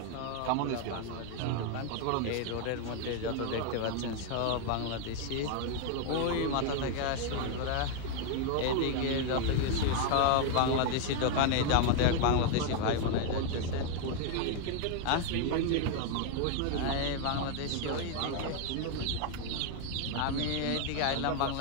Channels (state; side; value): different; both; correlation 0.00